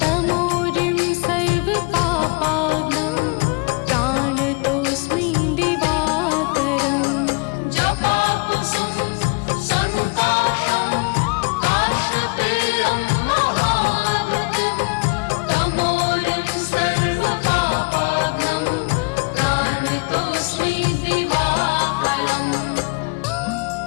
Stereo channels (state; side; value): quieter; right; 29.9 dB